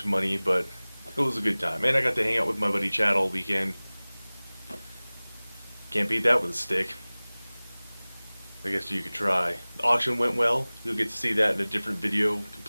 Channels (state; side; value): inverted; both; correlation -1.00